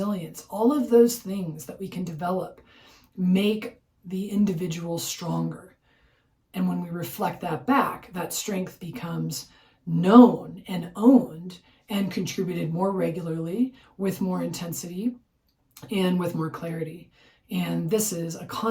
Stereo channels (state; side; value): identical; both; correlation 1.00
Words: All of those things that we can develop make the individual stronger. And when we reflect that back, that strength becomes known and owned and contributed more regularly with more intensity and with more clarity. And this is a